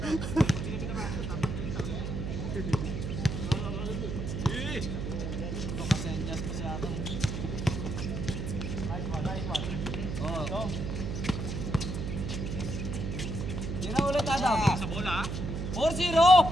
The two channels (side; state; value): right; noise; hum, 4 dB below the sound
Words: Tira ulit Adam. Sa bola. 4-0.